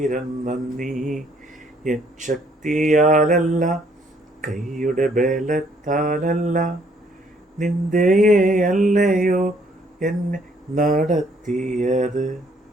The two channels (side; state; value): both; normal; correlation 0.66